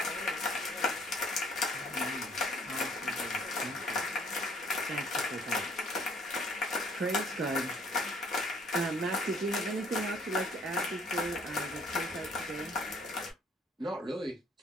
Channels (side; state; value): both; normal; correlation 0.59